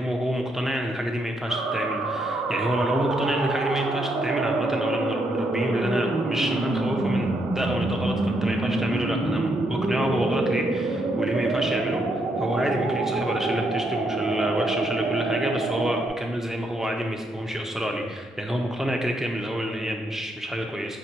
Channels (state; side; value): normal; both; correlation 0.76